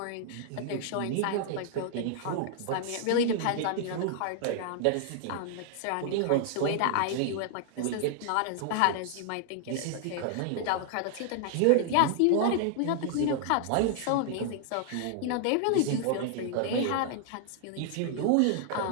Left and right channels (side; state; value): both; different; correlation 0.00